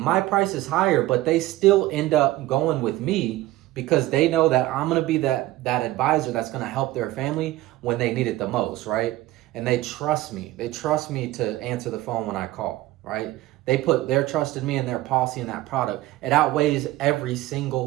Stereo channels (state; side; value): quieter; left; 16.8 dB